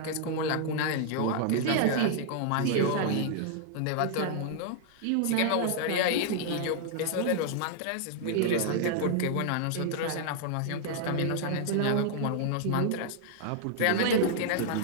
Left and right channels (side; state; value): both; different; correlation -0.01